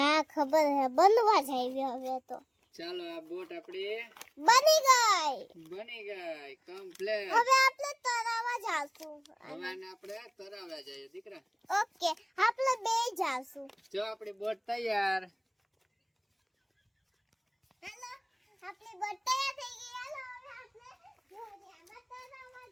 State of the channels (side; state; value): both; identical; correlation 1.00